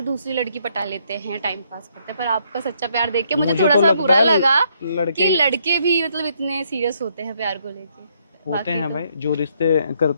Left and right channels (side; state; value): both; inverted; correlation -0.72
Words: दूसरी लड़की पटा लेते हैं, टाइम पास करते हैं। पर आपका सच्चा प्यार देख के मुझे थोड़ा तो सा लगता बुरा है लगा लड़के कि लड़के भी मतलब इतने सीरियस होते हैं प्यार को लेके। होते बाकी हैं तो भाई, जो रिश्ते